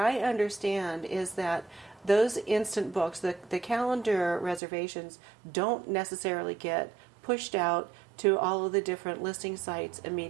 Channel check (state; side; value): drops out; left; at 4.6 s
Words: understand is that those instant books, the calendar reservations, don't necessarily get pushed out to all of the different listing sites